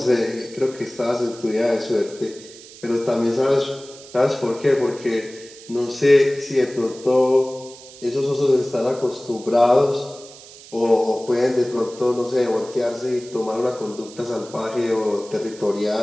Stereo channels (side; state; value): right; noise; hiss, 19 dB below the sound